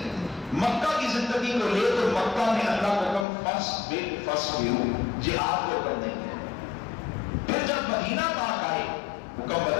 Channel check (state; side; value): drops out; right; at 3.2 s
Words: مکہ کی زندگی کو لے تو مکہ میں اللہ کا حکم فصبروا، جہاد کو کرنے کے۔ پھر جب مدینہ پاک آئے حکم